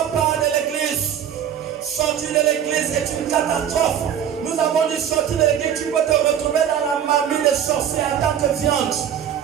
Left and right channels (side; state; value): left; quieter; 9.2 dB